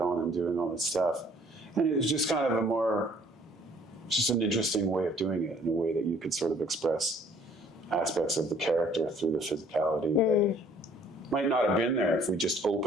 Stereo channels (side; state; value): both; normal; correlation 0.58